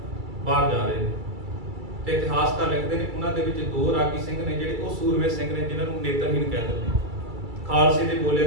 ਬਾਹਰ ਜਾ ਰਹੇ ਨੇ ਤੇ ਇਤਿਹਾਸਕਾਰ ਲਿਖਦੇ ਨੇ ਉਹਨਾਂ ਦੇ ਵਿੱਚ ਦੋ ਰਾਗੀ ਸਿੰਘ ਨੇ ਜਿਹੜੇ ਉਹ ਸੂਰਮੇ ਸਿੰਘ ਨੇ ਜਿਨ੍ਹਾਂ ਨੂੰ ਨੇਤਰਹੀਣ ਕਹਿ ਦਿੰਦੇ ਨੇ। ਖਾਲਸੇ ਦੇ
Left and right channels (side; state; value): left; late; 2.3 ms